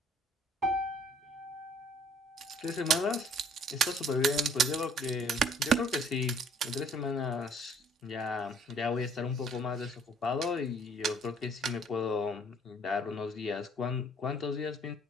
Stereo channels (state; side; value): normal; both; correlation 0.60